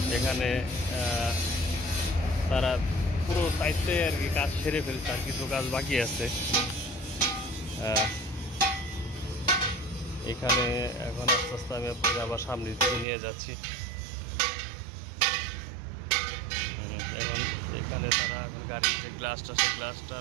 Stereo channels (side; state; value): left; drops out; at 13.1 s